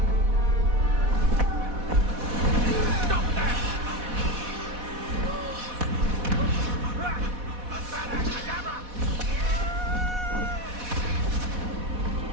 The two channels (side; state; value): left; late; 4.1 ms